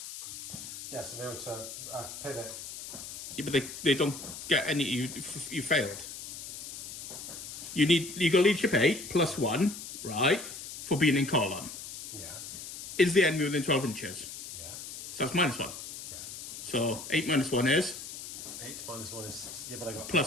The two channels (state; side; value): noise; left; hiss, 10 dB below the sound